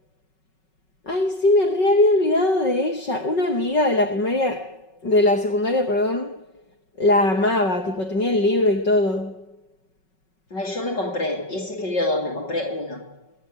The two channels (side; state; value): right; late; 5.4 ms